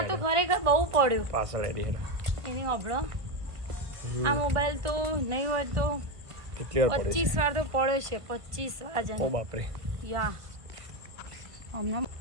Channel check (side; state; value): left; late; 1.6 ms